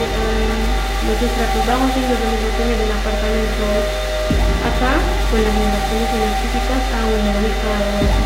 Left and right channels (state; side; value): identical; both; correlation 1.00